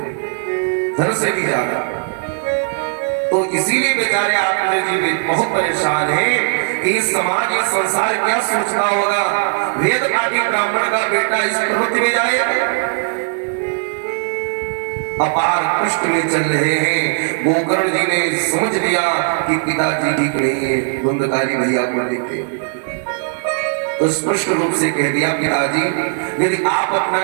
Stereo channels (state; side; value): silent; left; digital silence